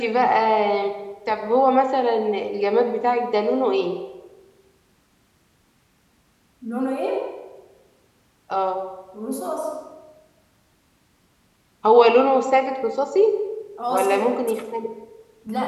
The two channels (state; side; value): identical; both; correlation 1.00